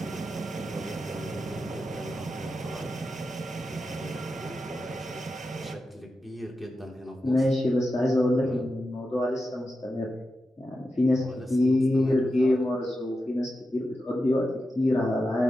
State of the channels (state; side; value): normal; both; correlation 0.90